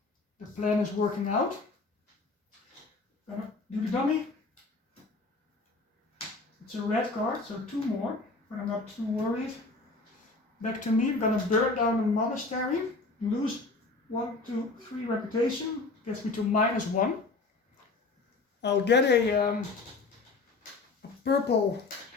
the plan is working out. Gonna do the dummy. It's a red card, so 2 more, but I'm not too worried. Back to me, I'm gonna burn down the monastery, lose 1, 2, 3 reputation, gets me to -1. I'll get a purple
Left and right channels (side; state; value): right; quieter; 3.6 dB